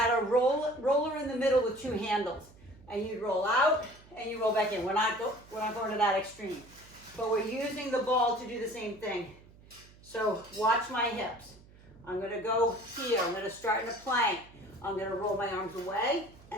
a roller in the middle with 2 handles. And you'd roll out and you roll back in. We're not going to that extreme. But we're using the ball to do the same thing. So watch my hips. I'm going to go here. I'm going to start in a plank. I'm going to roll my arms away.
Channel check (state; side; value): noise; right; hum, 24 dB below the sound